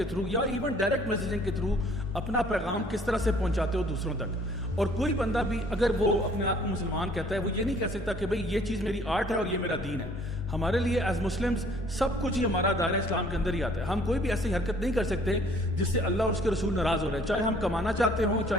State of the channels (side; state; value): both; normal; correlation 0.57